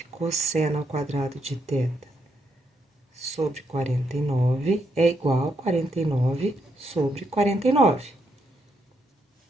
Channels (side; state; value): both; normal; correlation 0.78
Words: cosseno ao quadrado de θ sobre 49 é igual a 49 sobre 49.